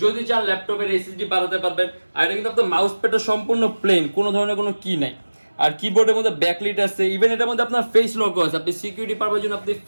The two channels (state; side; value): inverted; both; correlation -1.00